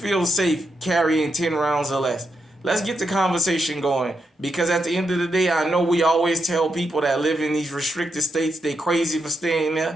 safe carrying 10 rounds or less? Let's get the conversation going, because at the end of the day, I know we always tell people that live in these restricted states they crazy for staying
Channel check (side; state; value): both; normal; correlation 0.83